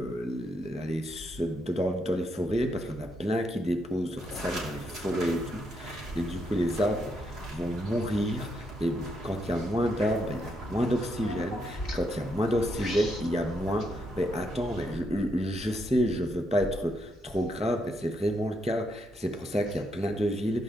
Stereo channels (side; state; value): both; normal; correlation 0.78